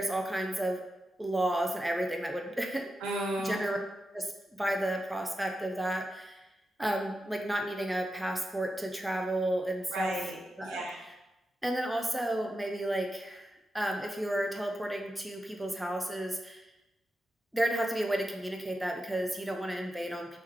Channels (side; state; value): both; normal; correlation 0.89